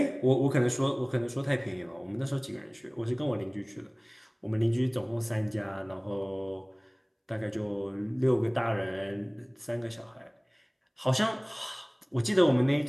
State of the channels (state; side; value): identical; both; correlation 1.00